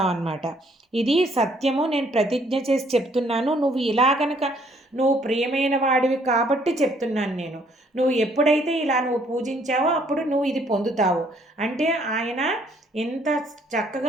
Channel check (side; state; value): both; normal; correlation 0.65